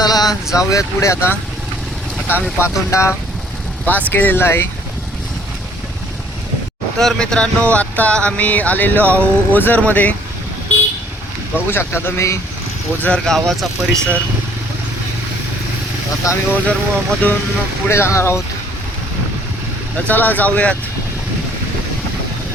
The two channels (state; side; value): normal; both; correlation 0.59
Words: जाऊयात पुढे. आता आम्ही पातोंडा पास केलेला आहे. तर मित्रांनो आत्ता आम्ही आलेलो आहोत ओझरमध्ये. बघू शकता तुम्ही ओझर गावाचा परिसर. आता आम्ही ओझर मधून पुढे जाणार आहोत. तर चला जाऊयात.